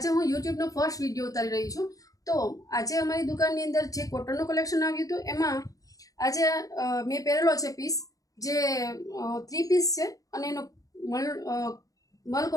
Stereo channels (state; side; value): late; right; 0.17 ms